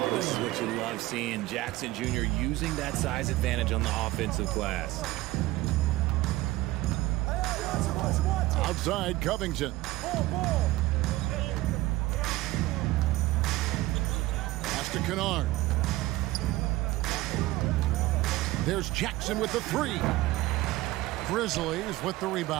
this is what you love seeing. Jackson Jr. using that size advantage on the offensive glass. Outside, Covington. Pass to Kennard. There's Jackson with the 3. Grizzlies with the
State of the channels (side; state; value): left; quieter; 17.9 dB